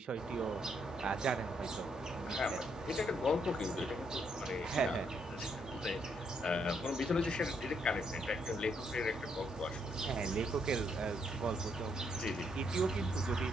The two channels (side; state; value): both; normal; correlation 0.74